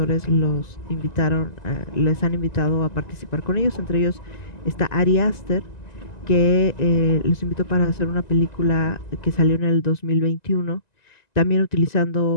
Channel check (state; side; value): late; right; 1.9 ms